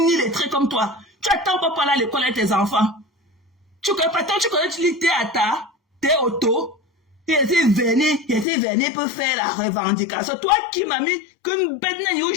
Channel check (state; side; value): drops out; right; at 8.5 s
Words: illettrée comme toi. Tu attends pas parler à l'école avec tes enfants. Tu connais, tu lis t'es auto. Il était venu pour faire la revendication. Toi qui m'as mis comme bedna